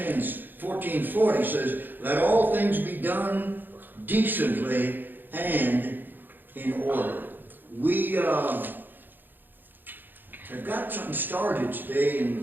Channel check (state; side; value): late; left; 0.091 ms